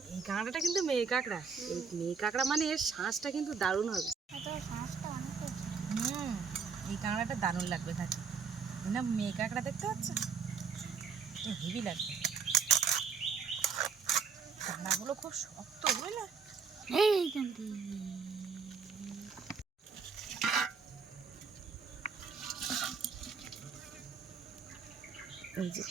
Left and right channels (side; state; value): left; quieter; 5.7 dB